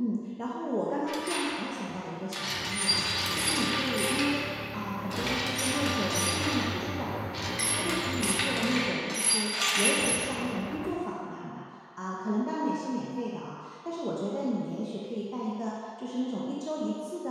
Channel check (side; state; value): both; identical; correlation 1.00